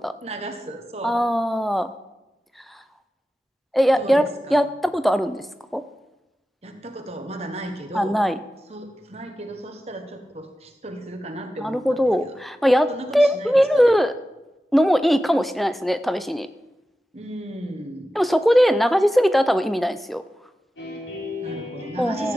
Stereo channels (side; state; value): both; normal; correlation 0.93